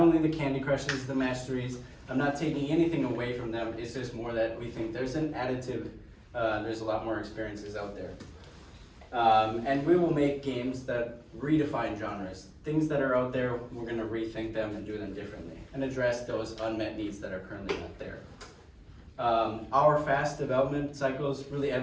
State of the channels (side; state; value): both; identical; correlation 1.00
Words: the Candy Crushes, the Masteries. I'm not taking anything away from them, it's just more that we think there's an additive, there's a lot more experiences out there. And we will make games that redefine genres. Things that are out there, we're going to rethink them and do them differently and address those unmet needs that are currently not there. Our fast development cycles really